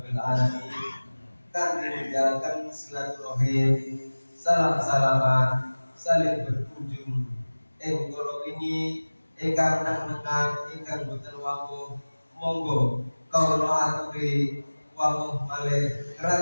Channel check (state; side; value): inverted; both; correlation -1.00